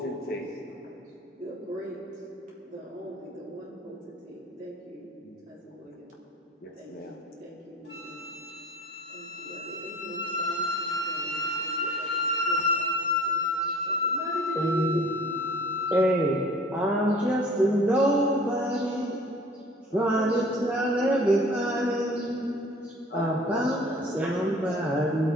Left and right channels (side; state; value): both; normal; correlation 0.47